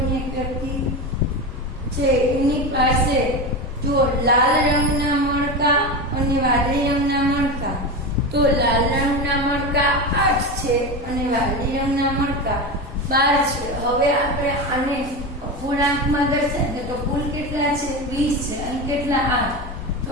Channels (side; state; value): both; normal; correlation 0.21